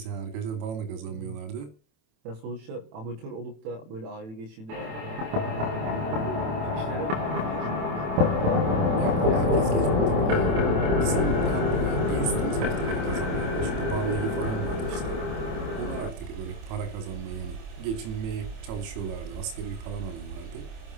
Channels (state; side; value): late; left; 27 ms